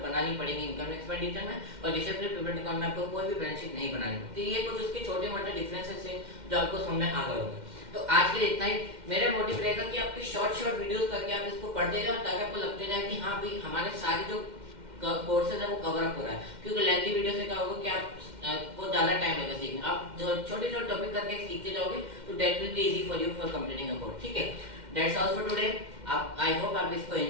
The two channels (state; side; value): late; left; 2.1 ms